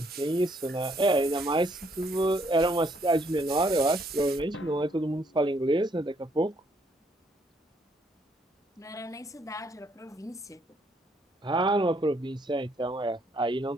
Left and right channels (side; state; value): both; normal; correlation 0.69